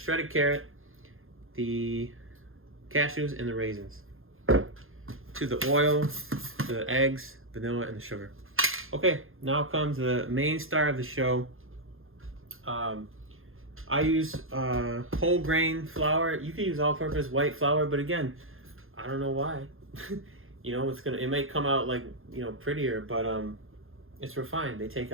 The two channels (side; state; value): left; late; 0.60 ms